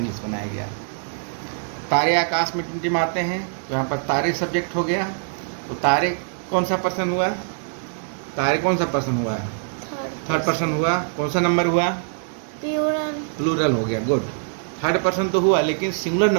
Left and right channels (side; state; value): left; silent; digital silence